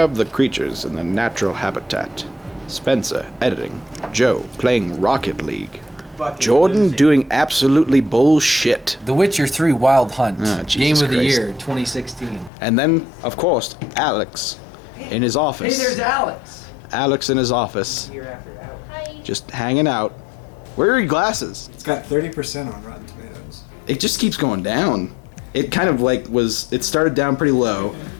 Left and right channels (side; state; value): right; drops out; at 12.5 s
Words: the creatures in their natural habitat. Spencer, editing. Joe, playing Rocket League. Jordan doing absolutely bullshit. The Witcher 3 Wild Hunt. Game of the Christ. Year 2016. And then, of course, Alex in his office. Hey, there's Alex. Alex in his office. Hi. Just hanging out. Where are your glasses? It's got 30% on Rotten Tomatoes. It just keeps going down. It kind of like it started down pretty low,